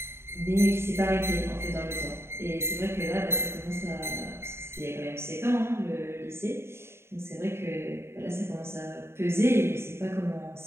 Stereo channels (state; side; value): late; left; 0.12 ms